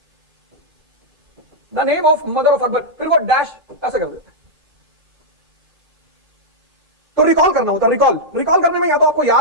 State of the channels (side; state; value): left; late; 2.5 ms